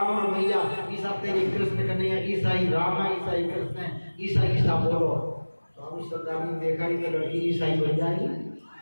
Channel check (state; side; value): inverted; both; correlation -1.00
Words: रमैया, ईसा तेरे कृष्ण कन्हैया, ईसा ही राम है, ईसा ही कृष्ण है, ईसा ईसा बोलो। स्वामी श्रद्धानंद देखा ही तो लड़की ईसाई बन जाएगी,